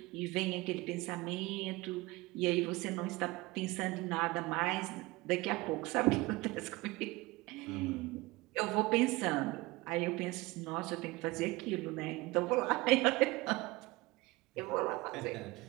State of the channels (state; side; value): quieter; left; 21.8 dB